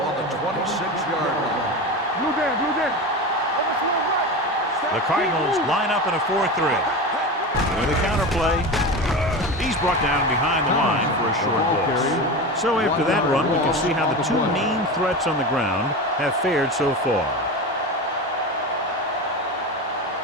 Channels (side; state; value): both; normal; correlation 0.25